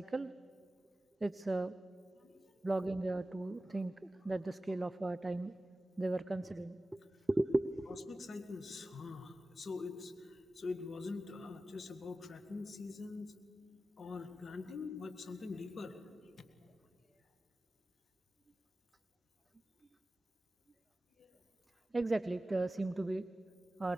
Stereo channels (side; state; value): both; normal; correlation 0.95